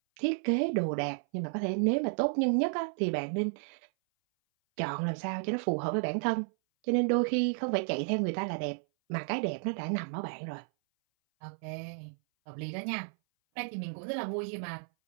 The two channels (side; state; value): left; silent; 56 dB below the other